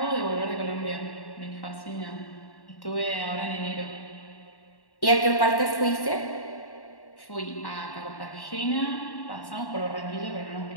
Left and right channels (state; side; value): late; right; 1.1 ms